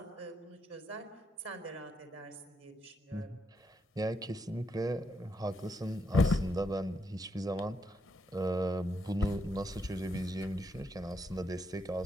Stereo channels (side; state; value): both; normal; correlation 0.79